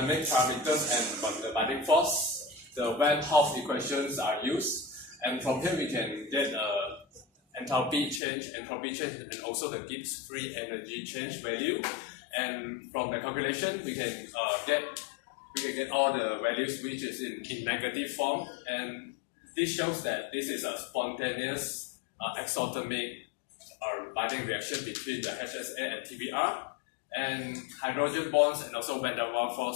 parameters and the binding force, the Van Hoff equations are used, and from here we can get enthalpy change, and also the Gibbs free energy change value. And from the calculation, we can get all the values which is in negative form, and this shows that this is a spontaneous exothermic binding reaction between the HSA and TBR, and hydrogen bonds and also van der Waals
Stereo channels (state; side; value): drops out; right; at 8.2 s